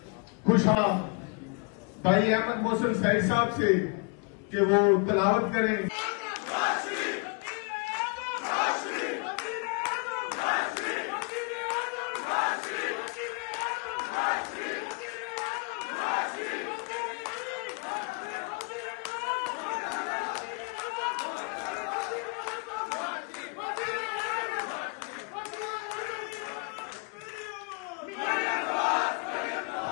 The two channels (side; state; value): right; quieter; 32.1 dB